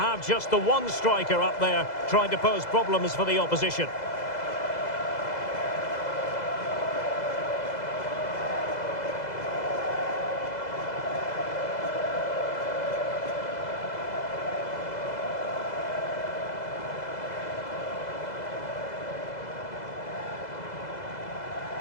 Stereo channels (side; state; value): right; late; 2.0 ms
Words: just the one striker up there trying to pose problems for the opposition.